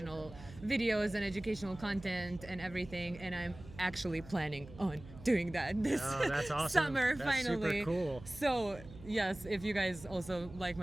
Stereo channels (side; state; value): right; noise; hum, 17 dB below the sound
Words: videos and educational content and everything, and I'm actually planning on doing that this that's awesome. summer. That's finally. Super cool. So yes, if you guys also like